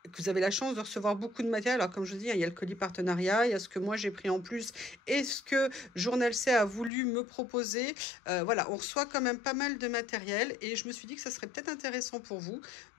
vous avez la chance de recevoir beaucoup de matériel, alors comme je vous dis, il y a le colis partenariat, il y a ce que moi j'ai pris en plus et ce que Journal C a voulu me proposer. Voilà, on reçoit quand même pas mal de matériel et je me suis dit que ça serait peut-être intéressant pour vous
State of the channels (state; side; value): drops out; right; at 6.9 s